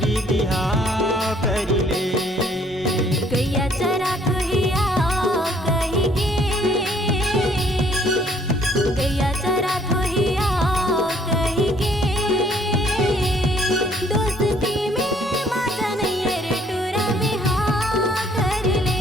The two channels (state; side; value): normal; both; correlation 0.63